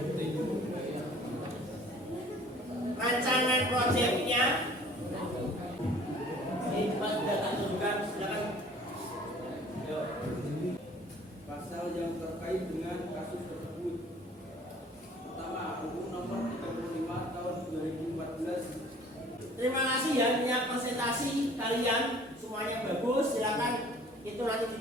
rancangan proyeknya? Ini Mas sudah tak tunjukkan, silakan. Yuk. Pasal yang terkait dengan kasus tersebut. Pertama, Hukum Nomor 35 Tahun 2014. Terima kasih ya punya presentasi kalian semuanya bagus. Silakan itu nanti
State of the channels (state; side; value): normal; both; correlation 0.51